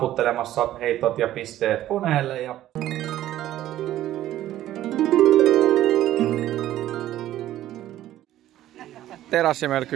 heitot ja pisteet koneelle ja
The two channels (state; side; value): quieter; left; 13.4 dB